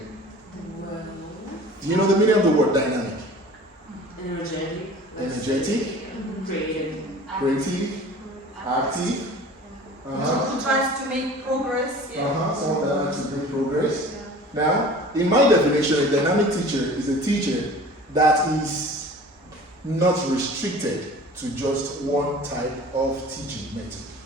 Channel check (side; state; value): both; normal; correlation 0.43